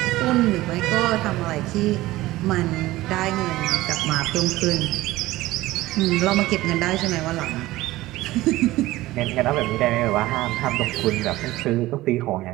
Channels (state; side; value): quieter; left; 17.5 dB